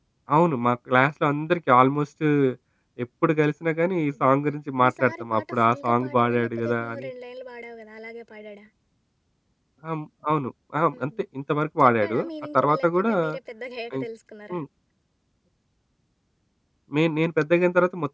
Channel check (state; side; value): identical; both; correlation 1.00